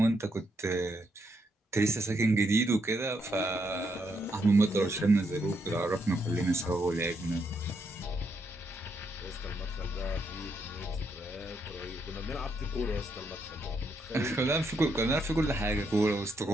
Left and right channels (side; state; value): both; normal; correlation 0.77